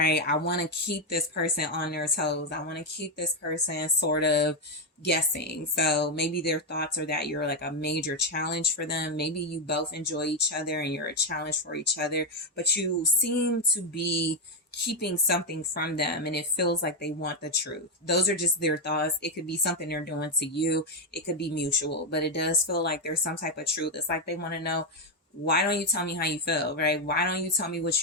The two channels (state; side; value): normal; both; correlation 0.05